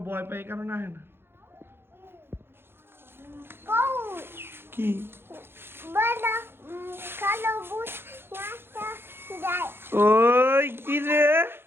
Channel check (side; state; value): left; late; 0.11 ms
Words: ভয় পায় এই কারণে আহে না। কও কি বলা কালো বুট নাচা যায়। ওই কি রে?